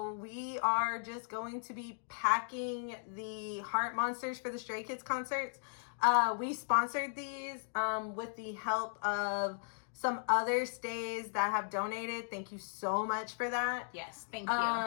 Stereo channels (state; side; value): silent; right; digital silence